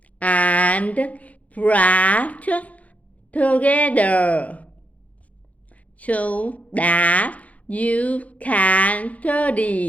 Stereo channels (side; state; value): right; late; 0.068 ms